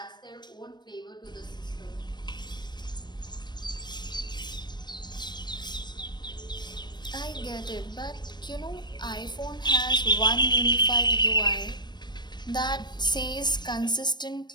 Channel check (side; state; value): right; late; 0.21 ms